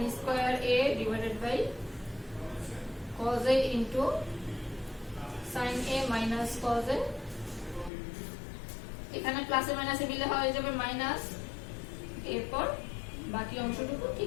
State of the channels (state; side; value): drops out; right; at 7.9 s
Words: square a divided by cos a into sin a minus cos a, এখানে প্লাসে মাইনাসে মিলে হয়ে যাবে মাইনাস, এরপর বাকি অংশটুকু